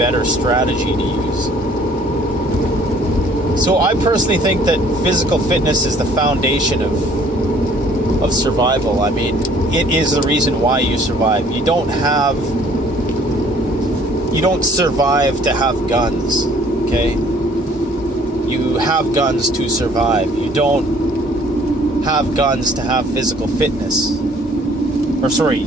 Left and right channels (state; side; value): normal; both; correlation 0.57